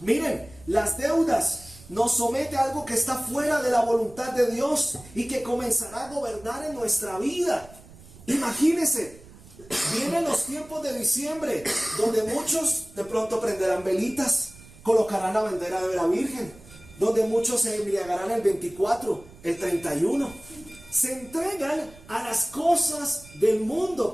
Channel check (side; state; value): right; noise; rumble, 21 dB below the sound